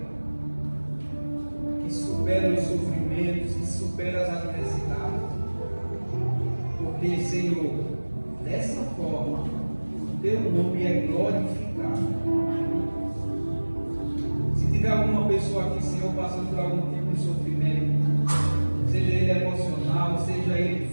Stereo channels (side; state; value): both; inverted; correlation -1.00